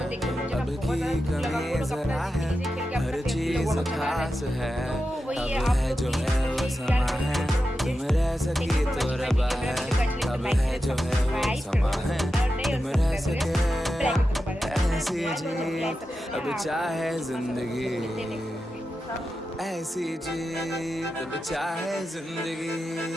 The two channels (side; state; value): both; normal; correlation 0.91